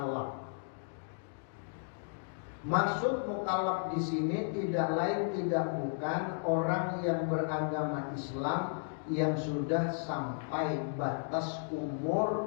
Maksud mukallaf di sini tidak lain tidak bukan orang yang beragama Islam yang sudah sampai batas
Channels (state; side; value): silent; right; digital silence